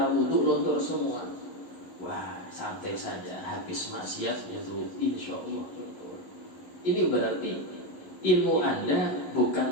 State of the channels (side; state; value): right; late; 11 ms